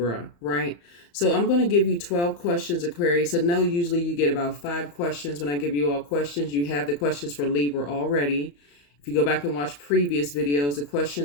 right? So I'm going to give you 12 questions, Aquarius. I know usually you get about 5 questions. When I give you all questions, you have the questions for Libra already. If you go back and watch previous videos, the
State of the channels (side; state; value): right; late; 35 ms